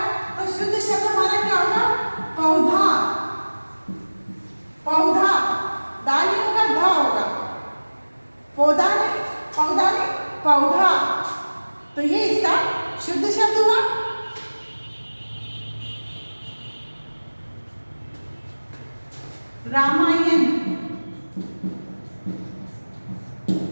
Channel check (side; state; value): both; inverted; correlation -1.00